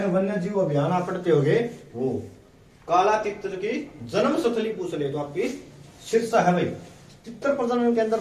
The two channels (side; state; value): both; identical; correlation 1.00